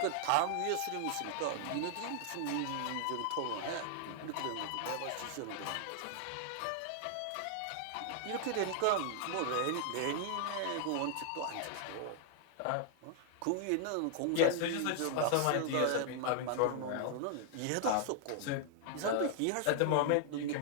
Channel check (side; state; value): both; different; correlation -0.01